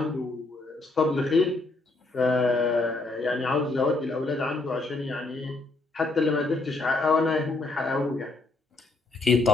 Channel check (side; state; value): right; quieter; 3.2 dB